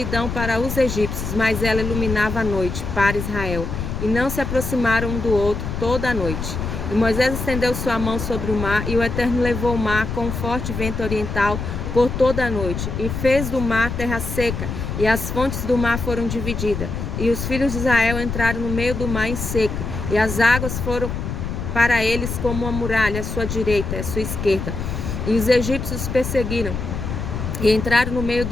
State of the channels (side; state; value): left; noise; rumble, 4 dB below the sound